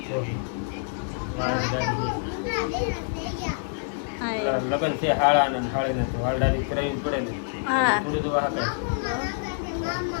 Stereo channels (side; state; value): right; silent; digital silence